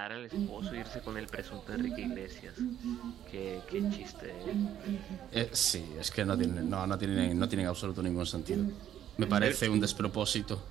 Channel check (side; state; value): left; quieter; 10.8 dB